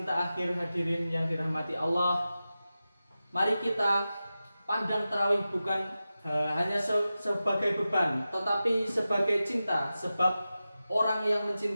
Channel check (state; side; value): inverted; both; correlation -0.93